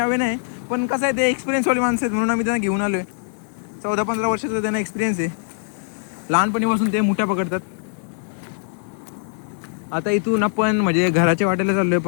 नाही. पण कसं आहे ते एक्सपिरियन्सवाली माणसं आहेत म्हणून आम्ही त्यांना घेऊन आलोय. 14-15 वर्षाचा त्यांना एक्सपिरियन्स आहे. लहानपणीपासून ते मुठ्या पकडतात. आता इथून आपण म्हणजे घराच्या वाटेला चाललोय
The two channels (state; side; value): silent; right; 56 dB below the other